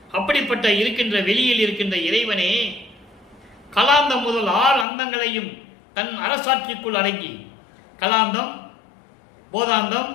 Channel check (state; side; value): drops out; right; at 4.9 s